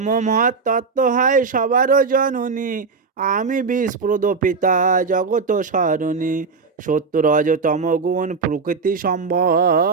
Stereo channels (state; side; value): quieter; left; 4.8 dB